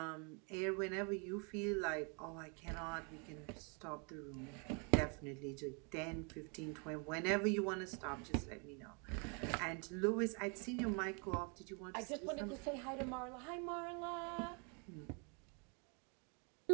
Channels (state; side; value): quieter; left; 35.4 dB